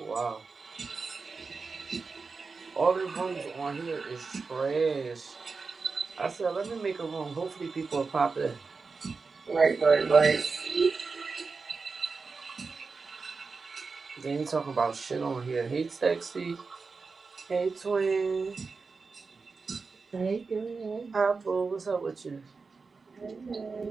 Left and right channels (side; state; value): left; quieter; 4.5 dB